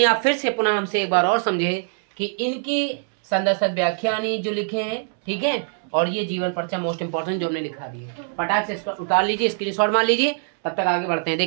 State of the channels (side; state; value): left; silent; 64 dB below the other